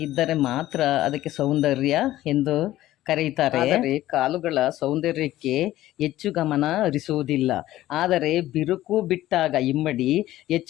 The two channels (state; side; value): quieter; right; 14.8 dB